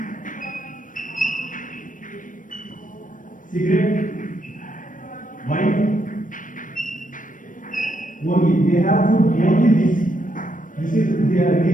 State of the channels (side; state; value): right; late; 0.38 ms